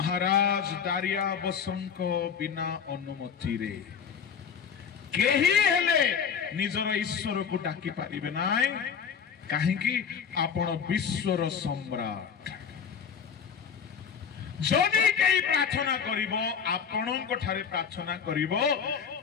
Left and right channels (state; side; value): quieter; right; 7.0 dB